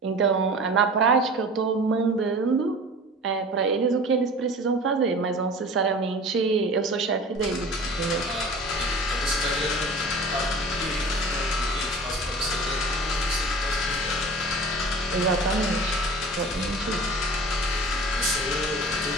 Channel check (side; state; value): both; normal; correlation 0.40